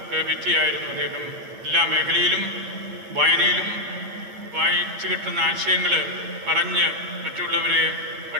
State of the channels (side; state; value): left; late; 8.5 ms